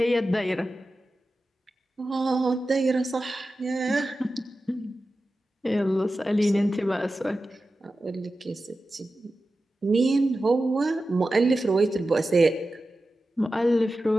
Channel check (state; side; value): normal; both; correlation 0.93